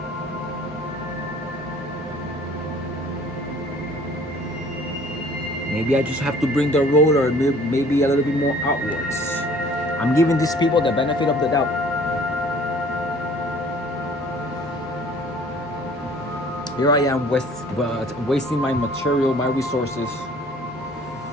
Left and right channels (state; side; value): normal; both; correlation 0.52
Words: Maybe I just have to bring the roller maybe a little bit more outwards. I'm giving these people the benefit of the doubt. Here I am wasting my material, my resources.